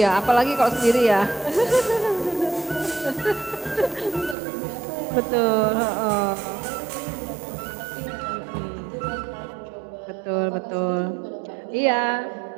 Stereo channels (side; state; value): left; drops out; at 4.4 s